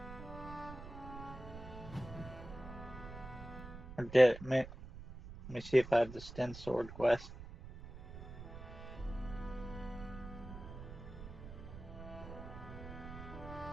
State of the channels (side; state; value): right; noise; rumble, 12 dB below the sound